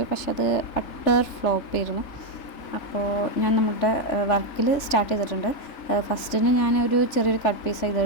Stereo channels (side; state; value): right; late; 3.4 ms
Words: പക്ഷെ അത് അട്ടർ ഫ്ലോപ്പ് ആയിരുന്നു. അപ്പോൾ ഞാൻ നമ്മുടെ വർക്കിൽ സ്റ്റാർട്ട് ചെയ്തിട്ടുണ്ട്. ഫസ്റ്റിന് ഞാനൊരു ചെറിയൊരു കട്ട് പീസ്